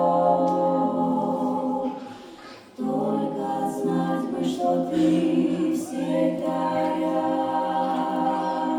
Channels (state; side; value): identical; both; correlation 1.00